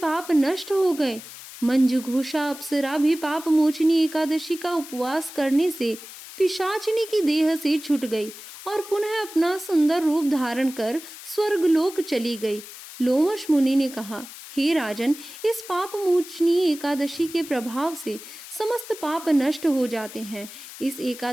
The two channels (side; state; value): left; noise; hiss, 15 dB below the sound